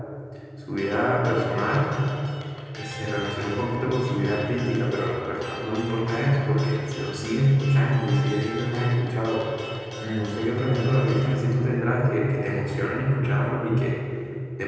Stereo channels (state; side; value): identical; both; correlation 1.00